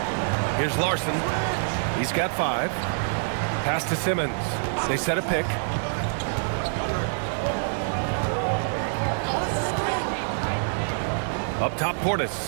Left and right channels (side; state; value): left; silent; digital silence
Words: Here's Larson. He's got 5. Pass to Simmons. They set a pick. Up top,